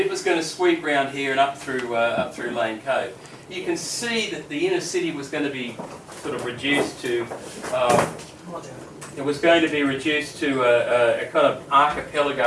it was going to sweep round here and up through Lane Cove. You can see that the inner city was going to be sort of reduced to a kind of archipelago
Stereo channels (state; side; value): identical; both; correlation 1.00